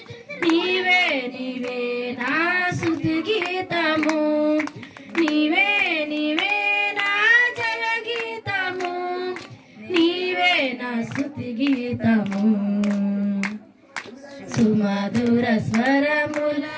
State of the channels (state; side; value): identical; both; correlation 1.00